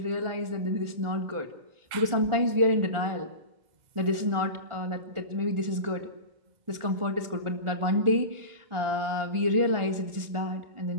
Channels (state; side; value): late; left; 1.4 ms